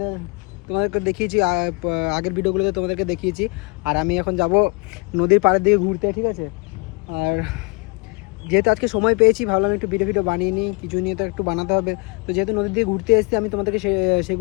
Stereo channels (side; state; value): right; quieter; 30.2 dB